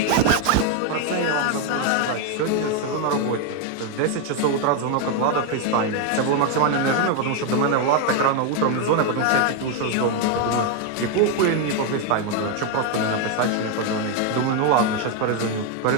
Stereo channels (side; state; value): both; different; correlation 0.01